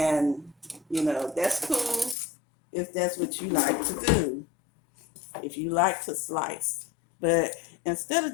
that's cool if that's what you like to do, if you like to slice. But instead of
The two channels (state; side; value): drops out; right; at 2.1 s